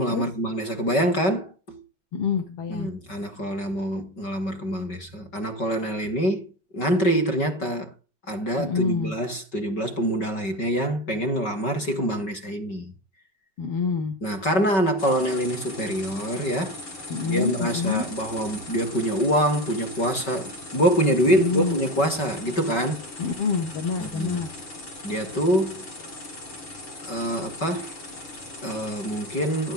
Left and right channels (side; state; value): right; late; 5.2 ms